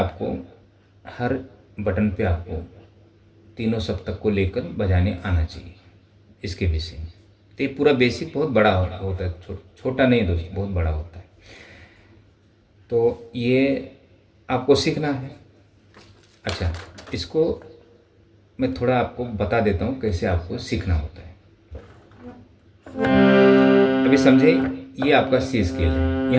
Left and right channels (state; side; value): identical; both; correlation 1.00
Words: हर बटन पे आपको तीनों सप्तक को लेकर बजाने आना चाहिए, इसके विषय में। तो ये पूरा बेसिक बहुत बड़ा होता है, छोटा नहीं दोस्त, बहुत बड़ा होता है। तो ये आपको सीखना है। अच्छा, इसको मैं थोड़ा आपको बता देता हूँ कैसे आपको सीखना होता है। अभी समझे, ये आपका सी स्केल है,